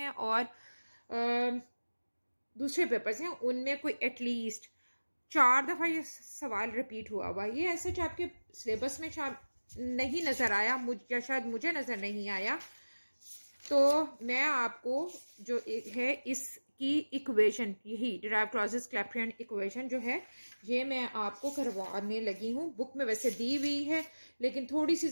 और दूसरे पेपर्स हैं उनमें कोई एटलीस्ट 4 दफ़ा ये सवाल रिपीट हुआ। ये ऐसे आपके सिलेबस में नहीं नज़र आया, या शायद मुझे नज़र नहीं आया। तो मैं आपको जो है इसकी इक्वेशन, यही डिराइव क्लॉजेस क्लैप्रियन इक्वेशन जो है, ये मैं आपको करवाने लगी हूँ। बुक में वैसे दी हुई है, लेकिन थोड़ी सी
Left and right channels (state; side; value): inverted; both; correlation -1.00